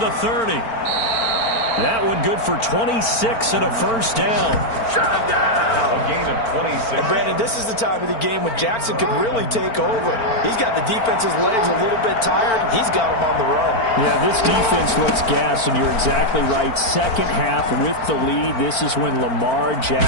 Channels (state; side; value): late; right; 4.4 ms